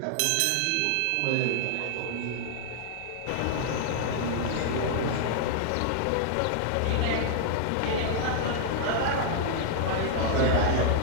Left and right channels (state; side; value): different; both; correlation -0.01